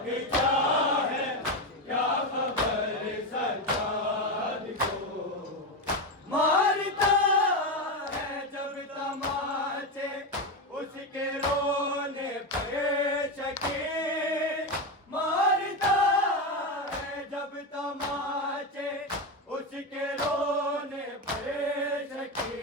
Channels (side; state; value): both; normal; correlation 0.13